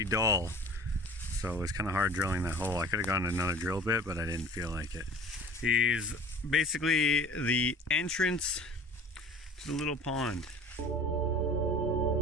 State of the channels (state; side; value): normal; both; correlation 0.44